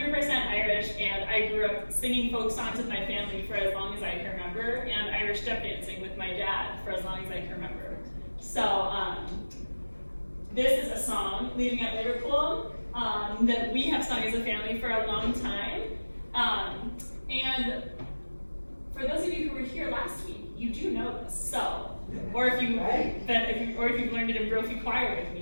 Irish, and I grew up singing folk songs with my family for as long as I can remember, and Irish step dancing with my dad for as long as I can remember. So this is a song, Leaving at Liverpool, that we have sung as a family for a long time. And for those of you who were here last week, you do know this. So, or if you've learned it in Brophy Choir with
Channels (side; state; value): both; inverted; correlation -1.00